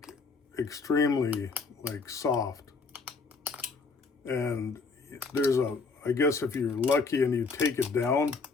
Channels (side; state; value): right; quieter; 4.4 dB